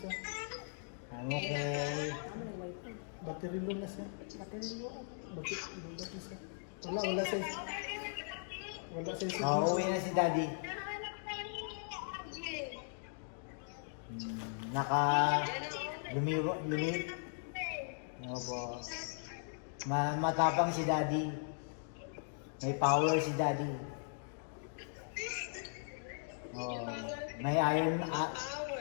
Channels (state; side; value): silent; right; digital silence